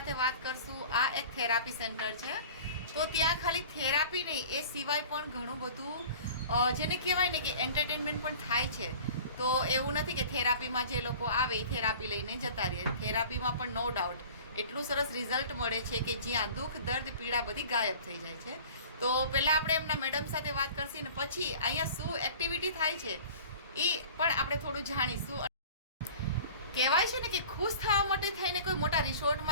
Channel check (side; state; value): both; inverted; correlation -0.43